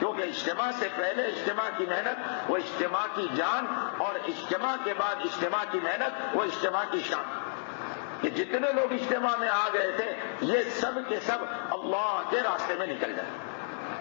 اجتماع سے پہلے اجتماع کی محنت وہ اجتماع کی جان، اور اجتماع کے بعد اجتماع کی محنت وہ اجتماع کی شان۔ کہ جتنے لوگ اجتماع میں آ گئے تھے یہ سب کے سب اللہ کے راستے میں نکل جائیں۔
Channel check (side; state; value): right; silent; digital silence